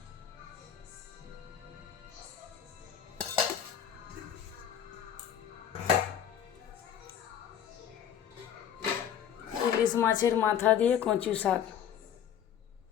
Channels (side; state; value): right; quieter; 9.0 dB